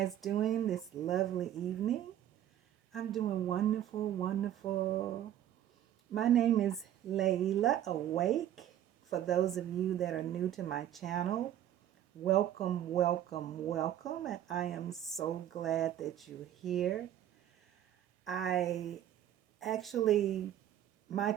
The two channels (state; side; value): quieter; left; 11.5 dB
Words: doing this lovely evening? I'm doing wonderful, wonderful. My name is Layla Awake. For those of you that are new to my channel, welcome, welcome, welcome. And I am so glad that you're here. I actually, my